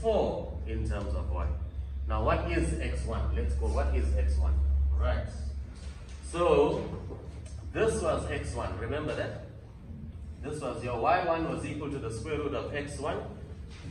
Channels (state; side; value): identical; both; correlation 1.00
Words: in terms of y. Now, what is x1? Let's go, what is x1? Right. So, this was x1, remember that? This was your y1 was equal to the square root of x1.